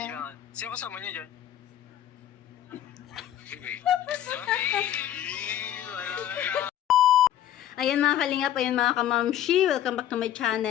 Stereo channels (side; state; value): right; quieter; 11.4 dB